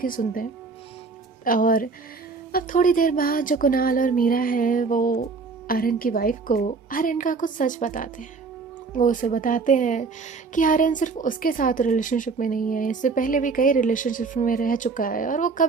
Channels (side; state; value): left; quieter; 4.5 dB